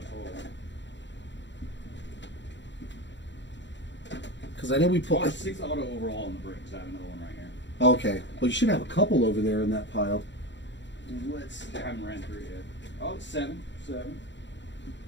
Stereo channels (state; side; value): late; right; 0.53 ms